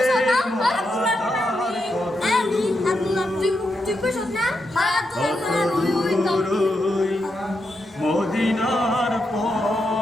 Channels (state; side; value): normal; both; correlation 0.84